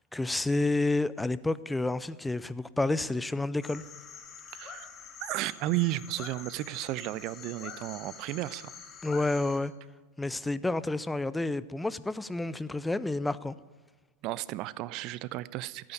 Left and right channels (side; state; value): both; normal; correlation 0.74